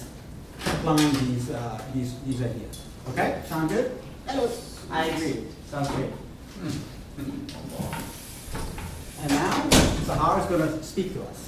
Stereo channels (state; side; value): identical; both; correlation 1.00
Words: applying these ideas. Okay, sound good? Yes. I agree. Sounds great. And now, Sahar is going to speak to